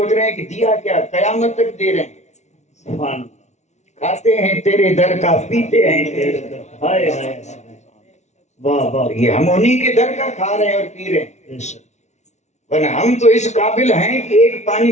رہے ہیں کہ دیا کیا، قیامت تک دے رہے ہیں، سبحان اللہ کھاتے ہیں تیرے در کا، پیتے ہیں تیرے در کا۔ ہائے ہائے واہ واہ یہ ہم انہی کے در کا کھا رہے ہیں اور پی رہے ہیں، بے شک ورنہ ہم تو اس قابل ہیں کہ ایک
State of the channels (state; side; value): late; right; 0.33 ms